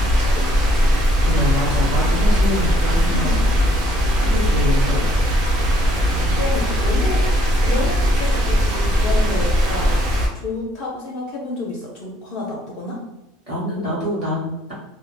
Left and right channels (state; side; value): normal; both; correlation 0.70